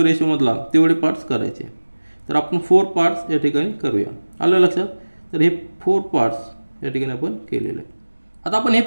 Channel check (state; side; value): inverted; both; correlation -1.00